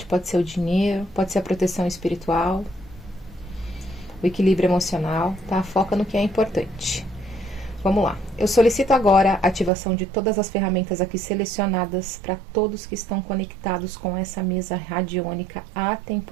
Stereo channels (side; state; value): left; drops out; at 9.7 s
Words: pode ser o dinheiro, pode ser a proteção espiritual, o equilíbrio emocional, tá? Foca no que é importante. Vamos lá. Eu solicito agora a ativação de todas as ferramentas aqui selecionadas para todos que estão conectados com essa mesa radiônica